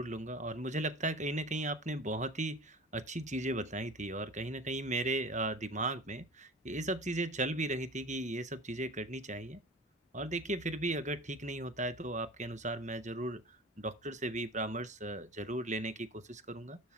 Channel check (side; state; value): both; normal; correlation 0.37